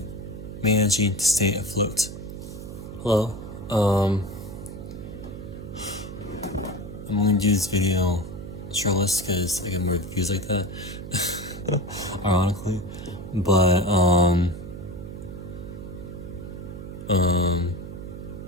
managing to stay afloat. Hello. I'm going to do this video shirtless because I get more views like that. Ironically. But,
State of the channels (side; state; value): right; noise; hum, 10 dB below the sound